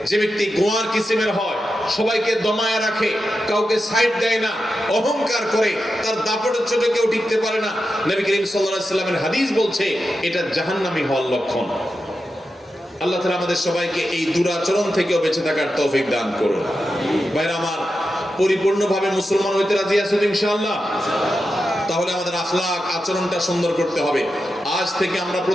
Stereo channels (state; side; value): normal; both; correlation 0.90